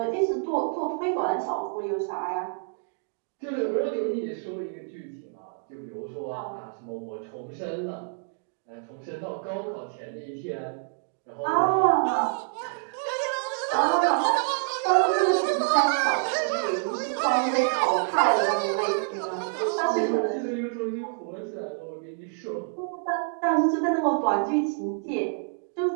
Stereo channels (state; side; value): silent; left; 60 dB below the other